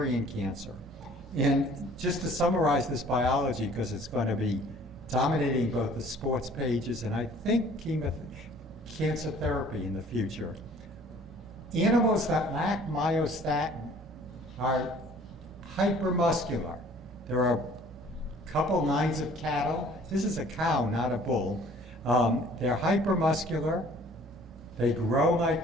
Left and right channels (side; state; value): both; normal; correlation 0.53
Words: cancer. And just to summarize this biology, because it's going to be dominating both the sports pages and I think cancer therapy in the future. Animals that lack myostatin are hypermuscular. There are a couple lines of cattle. This is a cow, not a bull. They're hypermuscular. They grow